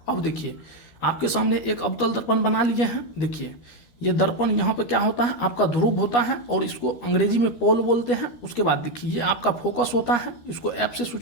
अब देखिए आपके सामने एक अवतल दर्पण बना लिए हैं। देखिए ये दर्पण यहाँ पे क्या होता है, आपका ध्रुव होता है और इसको अंग्रेजी में पोल बोलते हैं। उसके बाद देखिए ये आपका फोकस होता है, इसको एफ से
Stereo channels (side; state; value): right; late; 12 ms